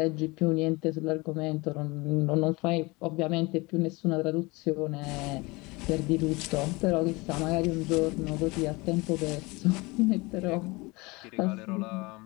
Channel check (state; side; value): quieter; right; 24.5 dB